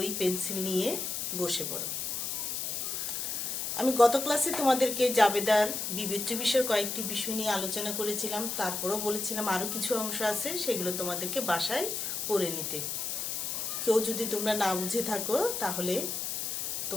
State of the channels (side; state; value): left; noise; hiss, 2 dB below the sound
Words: পেন্সিল নিয়ে বসে পড়ো। আমি গত ক্লাসে তোমাদেরকে জাবেদার বিবেচ্য বিষয়ের কয়েকটি বিষয় নিয়ে আলোচনা করেছিলাম, তারপরও বলেছিলাম আরও কিছু অংশ আছে, সেগুলো তোমাদেরকে বাসায় পড়ে নিতে। কেউ যদি তোমরা না বুঝে থাকো তাহলে